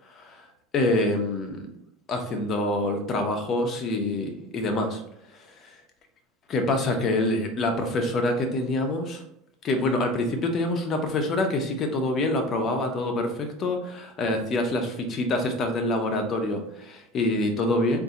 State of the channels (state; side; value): normal; both; correlation 0.37